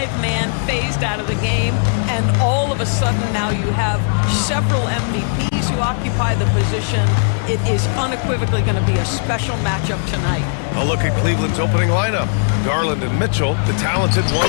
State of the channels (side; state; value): right; silent; 55 dB below the other